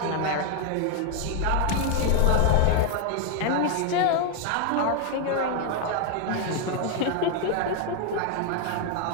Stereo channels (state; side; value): different; both; correlation 0.00